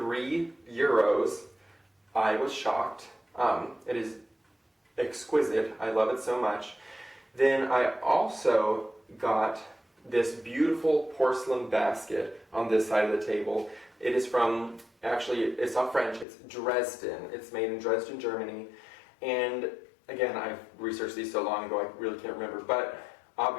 I was shocked. It is exquisite. I love it so much. Then I also got this beautiful porcelain basket on this side of the table. It is from, actually, it's not French, it's Dresden. It's made in Dresden, Germany. And again, I've researched these so long ago, I really can't remember. But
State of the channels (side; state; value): right; drops out; at 16.2 s